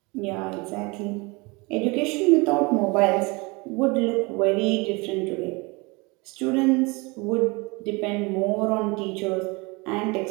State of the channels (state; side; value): quieter; left; 26.9 dB